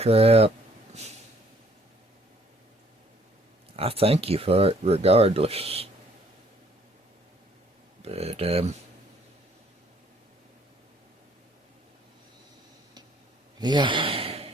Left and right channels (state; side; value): normal; both; correlation 0.62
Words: I thank you for it regardless. But yeah,